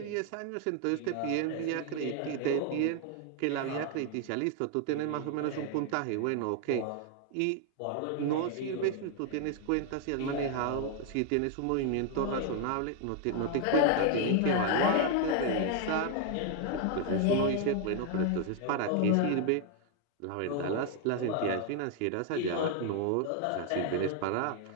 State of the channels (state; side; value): different; both; correlation 0.00